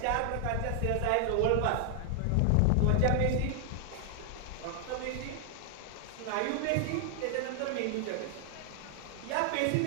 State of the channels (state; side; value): different; both; correlation 0.00